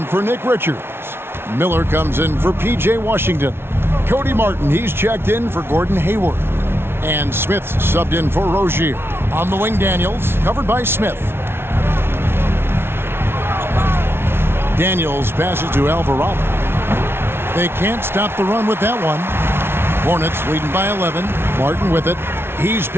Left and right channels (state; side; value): late; left; 0.12 ms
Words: for Nick Richards. Miller comes in for P.J. Washington. Cody Martin, he's checked in for Gordon Hayward. And Smith subbed in for Rozier. On the wing, Daniels, covered by Smith. Daniels passes to Alvarado. They can't stop the run with that one. Hornets leading by 11. Martin with it. He's